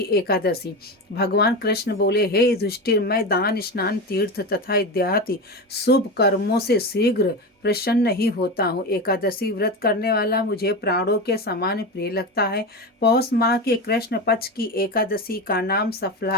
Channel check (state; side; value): normal; both; correlation 0.21